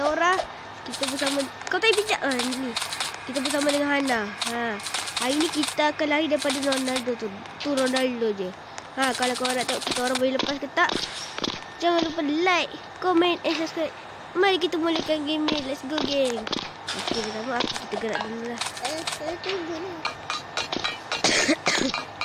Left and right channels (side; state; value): both; identical; correlation 1.00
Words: Nora. Kita bersama kau tak bijak ni. Kita bersama dengan Hana. Hari ni kita akan lari daripada Ronaldo tu. Tu Ronaldo je. Kalau korang nak tengok kita orang boleh lepas ke tak, jangan lupa like, komen and subscribe. Mari kita mulakan game ni. Let's go, geng. Okey, pertama kita gerak dulu lah. Saya tunggu ni.